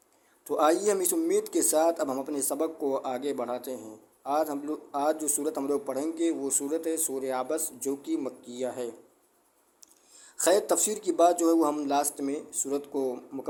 تو آئیے ہم اس امید کے ساتھ اب ہم اپنے سبق کو آگے بڑھاتے ہیں۔ آج جو صورت ہم لوگ پڑھیں گے وہ صورت ہے سورہ عبس، جو کہ مکیہ ہے۔ خیر، تفسیر کی بات جو ہے وہ ہم لاسٹ میں صورت کو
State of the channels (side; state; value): both; identical; correlation 1.00